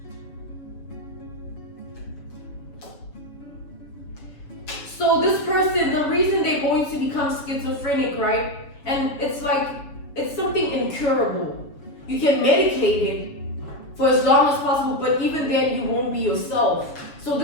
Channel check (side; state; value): right; late; 6.9 ms